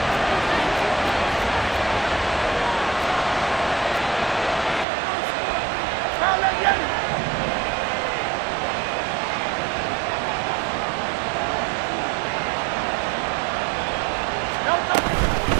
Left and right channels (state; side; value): drops out; left; at 4.9 s